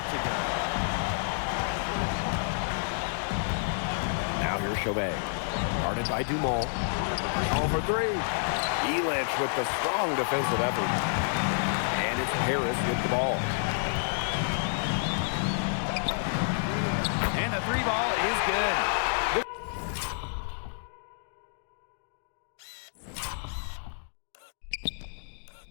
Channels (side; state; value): right; silent; digital silence